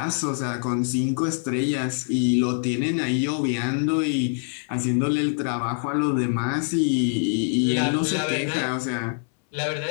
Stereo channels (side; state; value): right; silent; 62 dB below the other